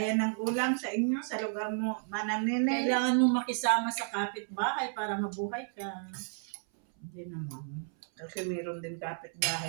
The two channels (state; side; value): silent; left; 56 dB below the other